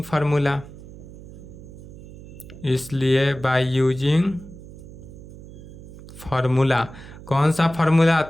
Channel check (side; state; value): right; noise; hum, 16 dB below the sound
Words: फार्मूला, इसलिए बाय यूजिंग फार्मूला, कौन सा फार्मूला,